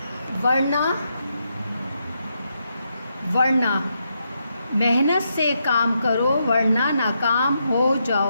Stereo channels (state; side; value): inverted; both; correlation -0.81